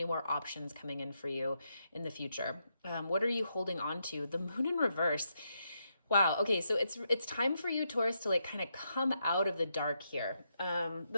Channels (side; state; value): both; inverted; correlation -0.81